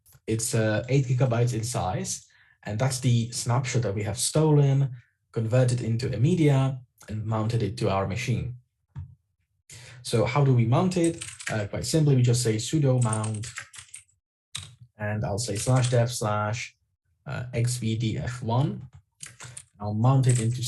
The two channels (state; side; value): identical; both; correlation 1.00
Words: It's 8 GB in size, and that's the snapshot that we have stolen, converted into a media, and mounted it to our machine. So how do we mount it? Quite simply, we just say sudo mount, and I'll say /dev/xvdf1. I'll mount it into